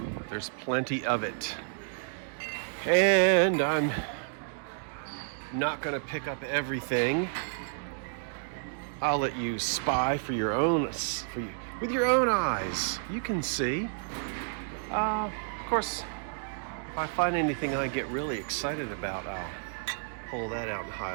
There's plenty of it. And I'm not going to pick up everything. I'll let you spy with your own eyes. You can see. Of course, if I find anything I get really excited about, I'll pull that out and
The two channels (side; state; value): left; silent; digital silence